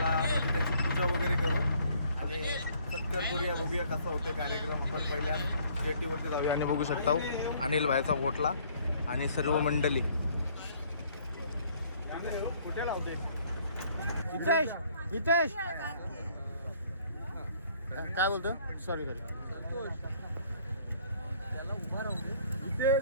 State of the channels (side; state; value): both; inverted; correlation -0.60